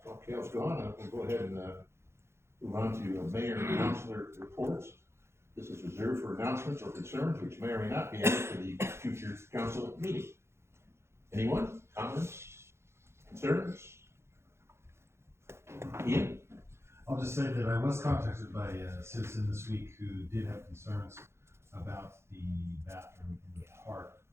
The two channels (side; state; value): left; late; 0.13 ms